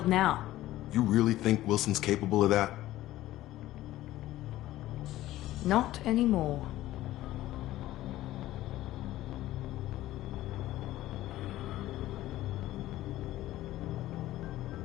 now. You really think Wilson's capable of that? Not anymore.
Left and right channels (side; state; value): right; quieter; 15.3 dB